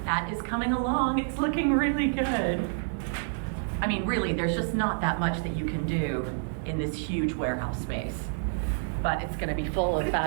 That is coming along. It's looking really good. I mean, really, there's just not that much that you can do in this huge warehouse space. But it's going to be full of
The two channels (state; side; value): silent; left; digital silence